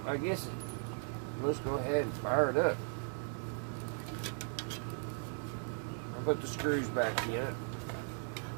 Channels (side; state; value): left; silent; 53 dB below the other